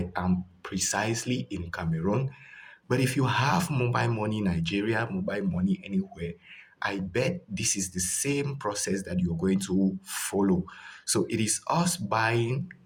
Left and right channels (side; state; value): both; identical; correlation 1.00